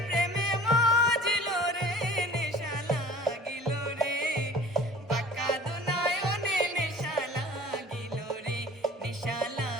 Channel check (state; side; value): normal; both; correlation 0.45